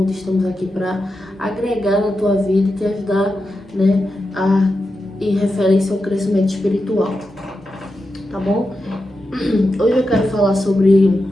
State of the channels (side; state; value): both; normal; correlation 0.89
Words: estamos aqui para agregar na tua vida e te ajudar, né, em referência ao crescimento espiritual, tá bom? Hoje eu quero falar sobre